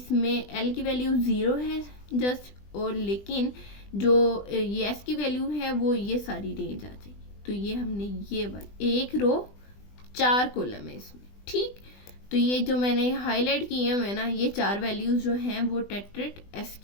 एल की वैल्यू 0 है जस्ट, और लेकिन जो ये एस की वैल्यू है वो ये सारी रेंज आ जाएगी। तो ये हमने ये वाली एक रो 4 कॉलम है इसमें, ठीक। तो ये जो मैंने हाईलाइट किए हैं ना, ये 4 वैल्यूज जो हैं वो टेट्रेट एस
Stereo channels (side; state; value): right; late; 20 ms